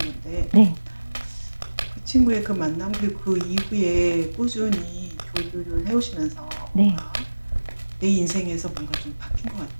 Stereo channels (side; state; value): both; inverted; correlation -1.00